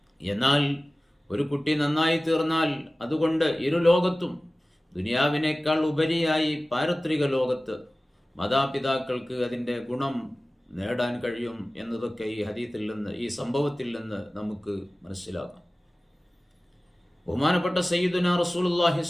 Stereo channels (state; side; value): normal; both; correlation 0.97